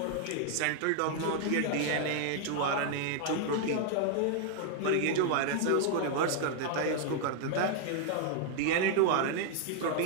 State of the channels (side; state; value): both; different; correlation 0.00